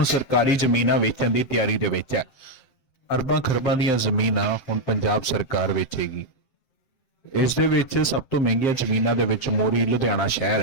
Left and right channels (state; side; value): late; right; 7.6 ms